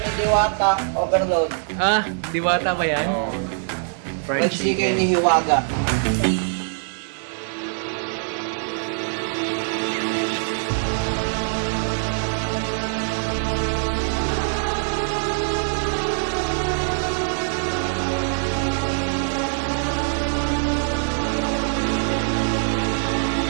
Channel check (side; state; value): left; silent; digital silence